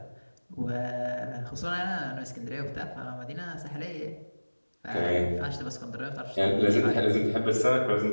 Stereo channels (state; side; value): inverted; both; correlation -1.00